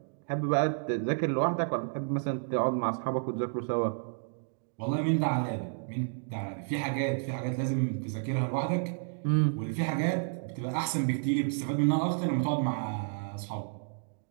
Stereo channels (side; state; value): left; silent; digital silence